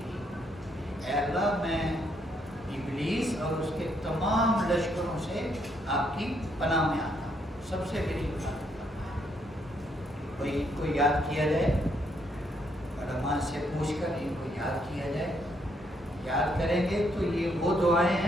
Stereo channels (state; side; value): normal; both; correlation 0.73